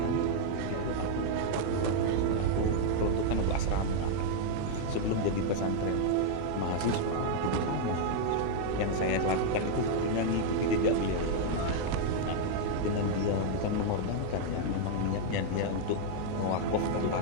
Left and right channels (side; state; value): both; different; correlation -0.01